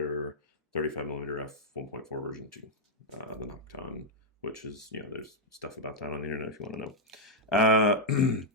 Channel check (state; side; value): normal; both; correlation -0.05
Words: 35mm f1.4 version 2, the Nocton, which is, there's stuff about that on the internet if you want to know.